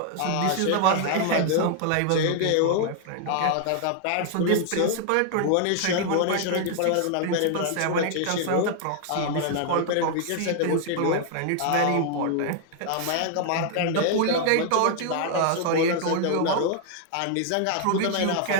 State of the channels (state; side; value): different; both; correlation 0.00